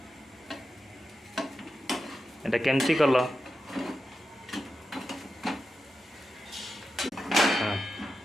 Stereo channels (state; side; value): normal; both; correlation 0.90